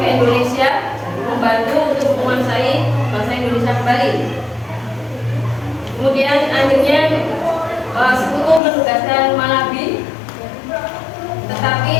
ke Indonesia membantu untuk menguasai bangsa Indonesia kembali. Kemudian akhirnya sekutu menugaskan Malabi, tetapi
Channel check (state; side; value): drops out; right; at 8.6 s